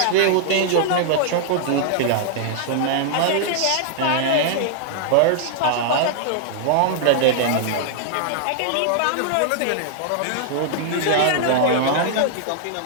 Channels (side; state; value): both; different; correlation -0.01